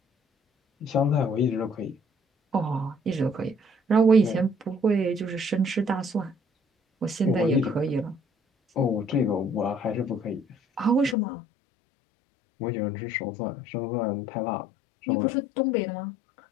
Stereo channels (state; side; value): drops out; right; at 11.2 s